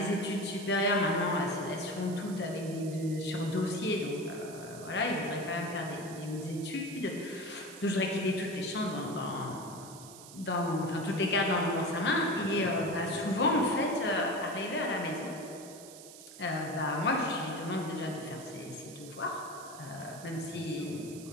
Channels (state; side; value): noise; right; hiss, 16 dB below the sound